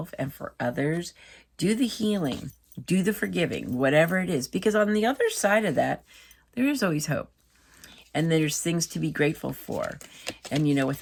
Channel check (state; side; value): identical; both; correlation 1.00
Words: and for others. Do the healing, do the forgiving, whatever it is, because on the other side of that, there is always hope. And there's things to be grateful for. And, with